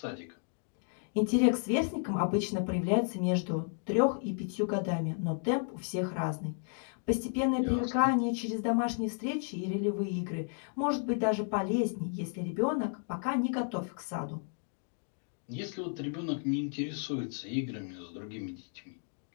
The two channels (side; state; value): right; silent; 56 dB below the other